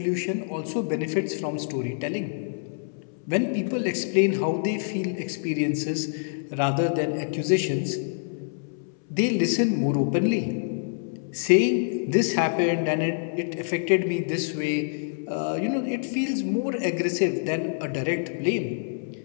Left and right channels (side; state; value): right; silent; 61 dB below the other